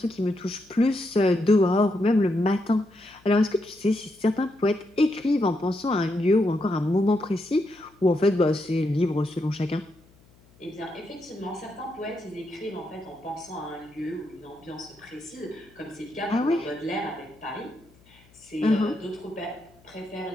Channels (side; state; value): left; noise; hum, 29 dB below the sound